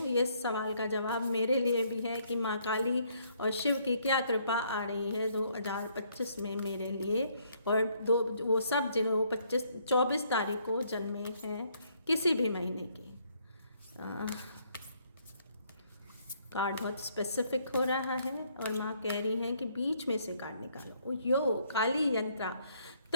ये सवाल का जवाब मेरे लिए भी है कि माँ काली और शिव की क्या कृपा आ रही है 2025 में मेरे लिए, और वो सब जिन्हों 24 तारीख को जन्मे हैं किसी भी महीने की। कार्ड बहुत स्पेसिफिक हो रहा है और माँ कह रही हैं कि बीच में से कार्ड निकालो। यो काली यंत्रा।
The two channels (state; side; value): inverted; both; correlation -0.68